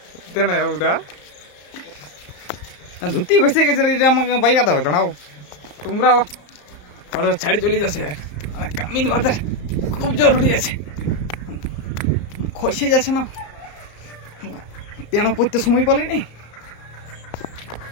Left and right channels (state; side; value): late; right; 34 ms